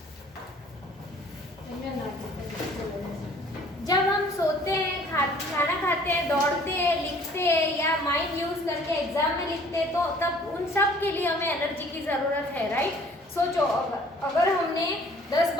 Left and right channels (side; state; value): both; normal; correlation 0.54